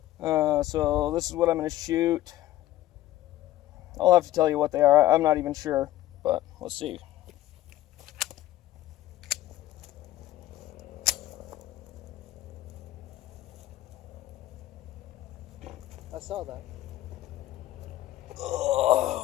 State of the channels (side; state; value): right; quieter; 14.6 dB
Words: So this is what I'm gonna shoot. I'll have to tell you what they are. I'm not even sure, but let's see. I saw that.